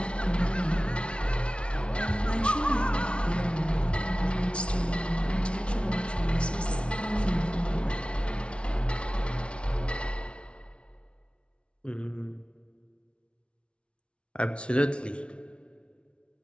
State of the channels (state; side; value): late; right; 0.059 ms